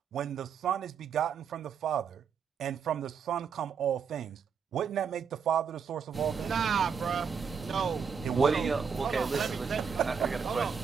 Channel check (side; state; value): left; quieter; 6.5 dB